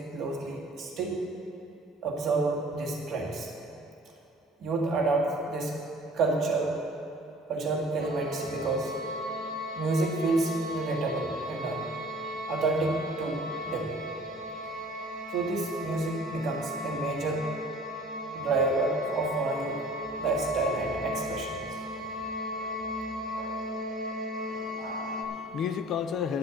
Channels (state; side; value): normal; both; correlation 0.48